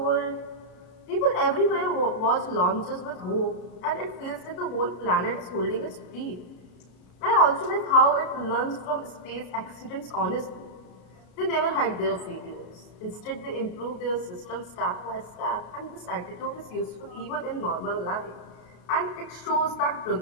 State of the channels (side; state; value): right; late; 32 ms